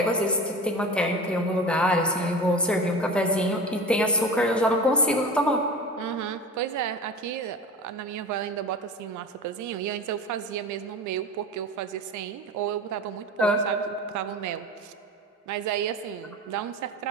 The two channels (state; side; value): normal; both; correlation 0.33